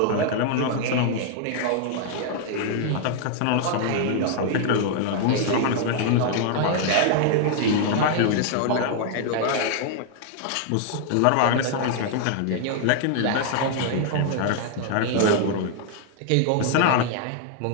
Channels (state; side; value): different; both; correlation 0.00